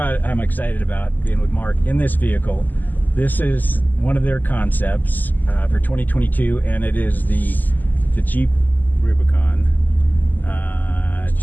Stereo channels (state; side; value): late; right; 0.085 ms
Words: I'm excited about being with Mark in this vehicle. This is one of their concepts for 2022, and it is the Jeep Rubicon